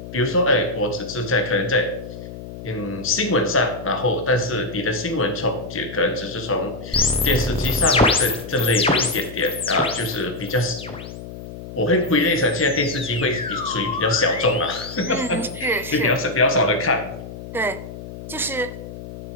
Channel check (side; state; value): left; noise; hum, 12 dB below the sound